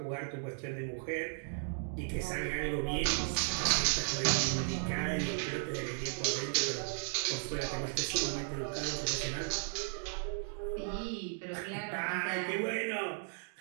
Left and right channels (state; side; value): silent; left; 54 dB below the other